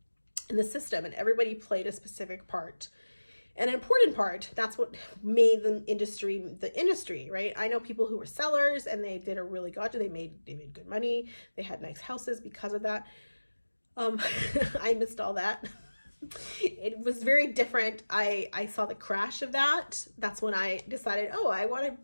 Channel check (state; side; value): inverted; both; correlation -1.00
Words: in the system, and everybody played a specific part, an important part. That's what made the industry, right? I know people who were sellers and they did a really good job. They made good money. They had nice houses because of that. I missed all that. It was very different. I saw the crash of that. That's when I decided, oh, I want to